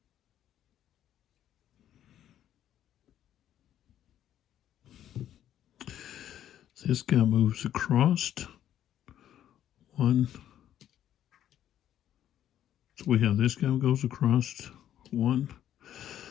This guy moves across. One. So we have this guy goes across. One.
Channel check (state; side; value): quieter; right; 11.2 dB